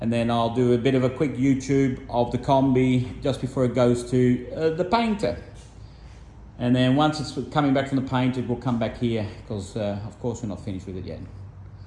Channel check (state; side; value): identical; both; correlation 1.00